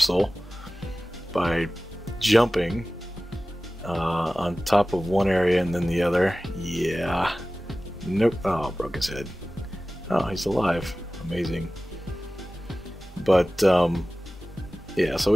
by jumping on top of one area and then the other. Yeah. Nope. Oh, broke his head. Oh, he's alive. Amazing. But yeah, so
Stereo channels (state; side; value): normal; both; correlation 0.97